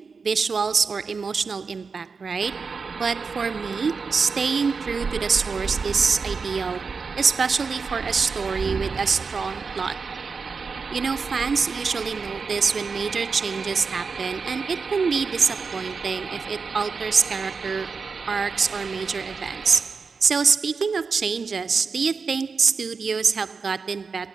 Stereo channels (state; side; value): quieter; left; 5.0 dB